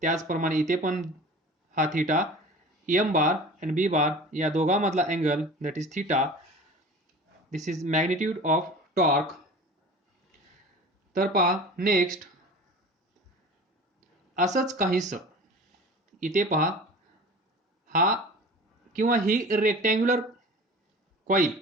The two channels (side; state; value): both; normal; correlation 0.38